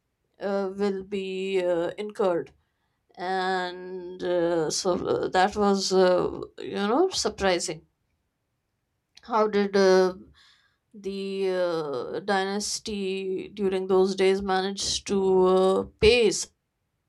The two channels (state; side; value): identical; both; correlation 1.00